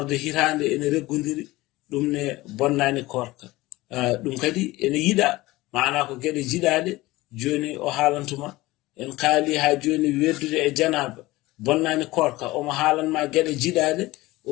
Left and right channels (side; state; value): right; quieter; 19.3 dB